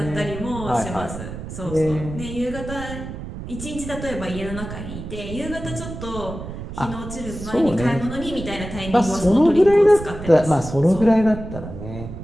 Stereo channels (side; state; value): right; noise; rumble, 10 dB below the sound